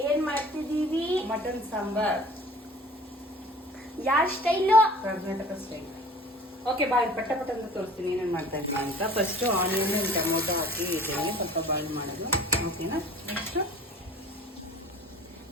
ಏನ್ ಮಾಡ್ತಿದೀವಿ? ಮಟನ್ ಸಾಂಬಾರ್. ಯಾರ ಸ್ಟೈಲು? ಕರ್ನಾಟಕ ಸ್ಟೈಲ್. ಓಕೆ, ಬಾಯ್ ಪಟ್ಟ ಪಟ್ಟ ಅಂತ ತೋರಿಸ್ತೀನಿ ಏನೇನು ಮಾಡ್ತಾ ಇದ್ದೀನಿ ಅಂತ. ಫಸ್ಟ್ ಆನಿಯನ್ ಟೊಮೊಟೊ ಹಾಕಿ ಇದ್ದೀನಿ, ಸ್ವಲ್ಪ ಬಾಯ್ಲ್ ಮಾಡೋದು. ಓಕೆನಾ? ನೆಕ್ಸ್ಟ್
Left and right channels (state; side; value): normal; both; correlation 0.46